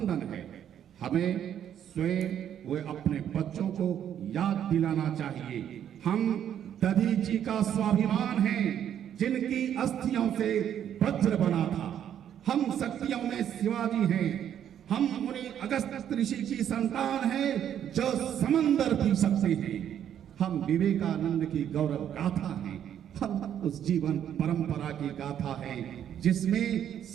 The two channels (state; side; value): quieter; left; 9.8 dB